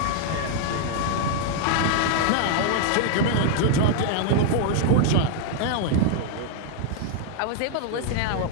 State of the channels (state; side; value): different; both; correlation 0.00